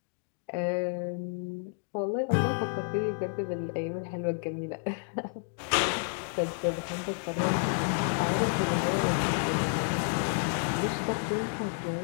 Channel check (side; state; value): right; silent; 58 dB below the other